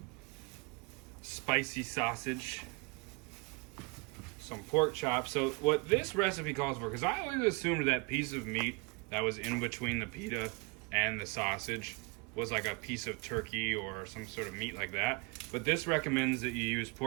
spicy sausage, some pork chops. So what this recipe calls for, because I always assumed that piece of meat that was in between the pita and the sausage was like a piece of turkey or some sort of meat like that. But this recommends that you use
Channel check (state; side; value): quieter; left; 30.0 dB